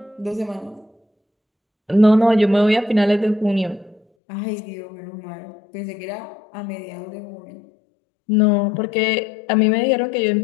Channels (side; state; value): right; drops out; at 4.0 s